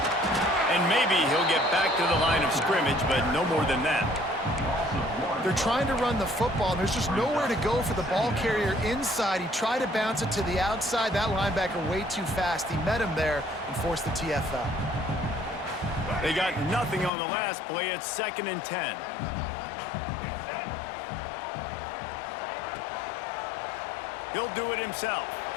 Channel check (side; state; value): right; drops out; at 17.1 s